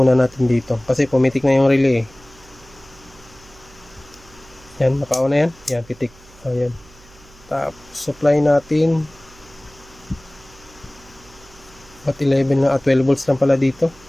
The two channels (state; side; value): noise; right; hum, 24 dB below the sound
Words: natin dito kasi pumitik na yung relay. Yan, naka-on na yan. Yan, pitik. Ayan. Tapos supply natin at 11 na 12 volts lang pala dito.